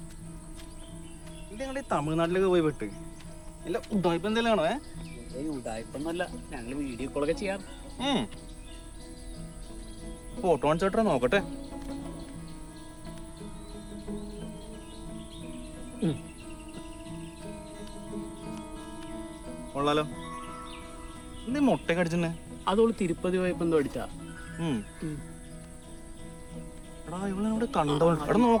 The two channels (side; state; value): both; identical; correlation 1.00